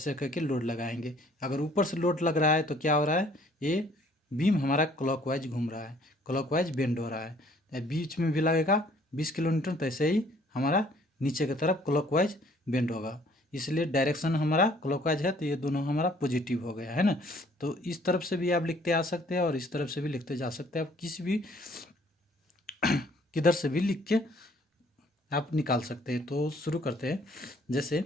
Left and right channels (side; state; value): both; normal; correlation 0.60